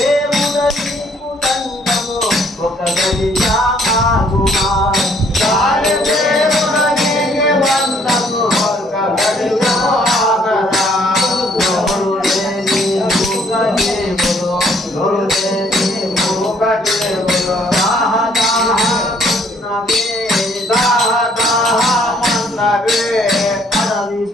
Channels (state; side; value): normal; both; correlation 0.64